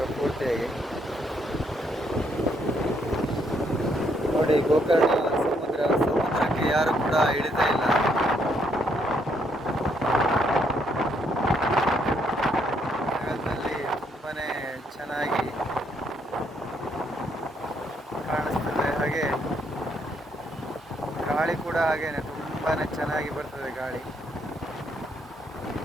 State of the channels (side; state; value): both; normal; correlation 0.72